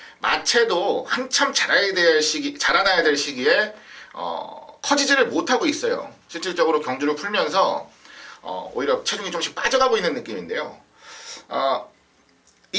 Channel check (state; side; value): identical; both; correlation 1.00